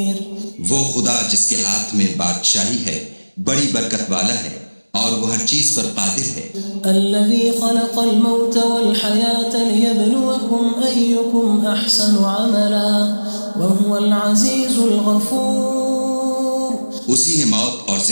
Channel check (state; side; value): inverted; both; correlation -1.00